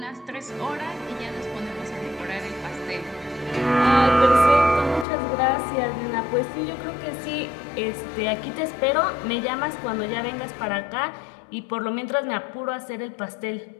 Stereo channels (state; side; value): drops out; right; at 5.1 s